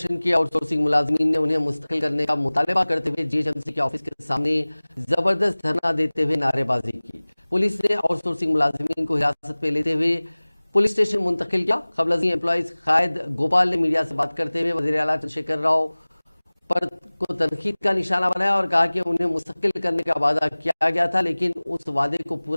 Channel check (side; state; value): both; inverted; correlation -1.00